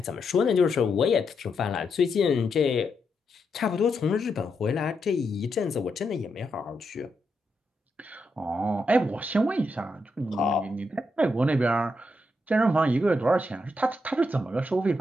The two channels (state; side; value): normal; both; correlation 0.82